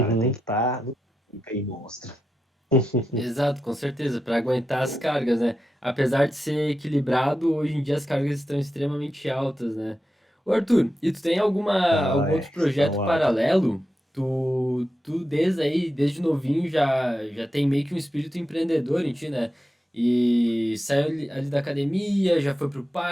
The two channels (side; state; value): both; normal; correlation 0.89